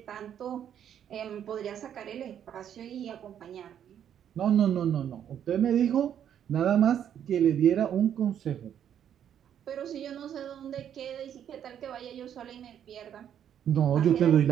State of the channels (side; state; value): left; quieter; 9.5 dB